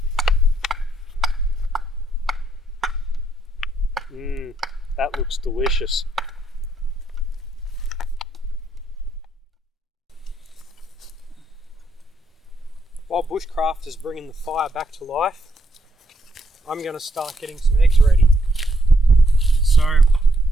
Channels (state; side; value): normal; both; correlation 0.75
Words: That looks delicious. While Bushcraft is bringing the fire back to life, I'm going to start getting some eggs ready. So,